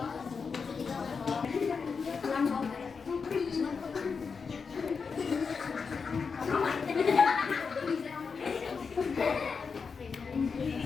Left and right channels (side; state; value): right; quieter; 5.4 dB